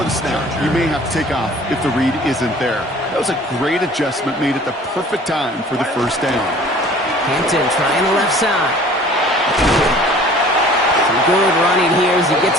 the snap, you may have to take off if the read isn't there. That was a great adjustment made at the perfect time for the first down. Hampton trying the left side. Some good running here as he gets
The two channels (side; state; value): both; normal; correlation 0.49